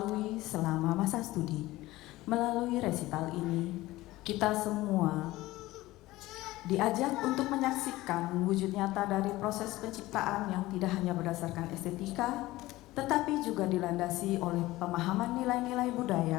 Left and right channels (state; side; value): quieter; right; 18.0 dB